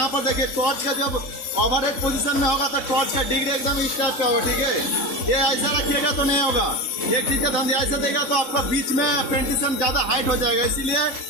पर देखिए टॉर्च का जब ओवरहेड पोजीशन में होगा तो टॉर्च का डिग्री एकदम इस टाइप का होगा। ठीक है, ये ऐसा रखिएगा तो नहीं होगा। एक चीज का ध्यान दिया, ऐसा देगा तो आपका बीच में पेंटिशन ज्यादा हाइट हो जाएगा, इसीलिए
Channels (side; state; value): right; late; 3.6 ms